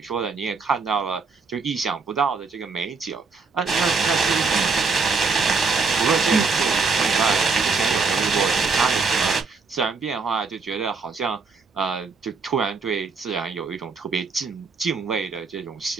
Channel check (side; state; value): left; quieter; 4.5 dB